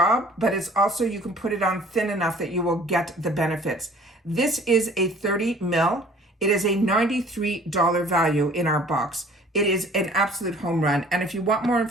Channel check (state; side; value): normal; both; correlation 0.51